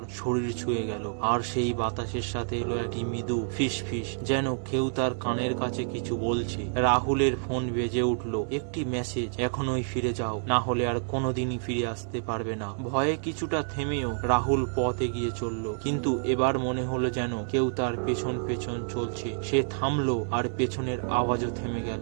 শরীর ছুঁয়ে গেল, আর সেই বাতাসের সাথে এলো একটি মৃদু ফিস ফিস, যেন কেউ তার কানের কাছে কিছু বলছে। রাহুলের ফোন বেজে উঠল। একটি মেসেজ, এখনই ফিরে যাও, না হলে আর কোনোদিনই ফিরে আসতে পারবে না। ভয়ে কিছুটা থেমেও রাহুল পথ এগিয়ে চলল, কিন্তু এবার মনে হলো যেন কেউ তার পেছন পেছন চলছে। সে থামলো, আর পেছনের আওয়াজও থেমে গেল।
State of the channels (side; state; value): left; silent; 59 dB below the other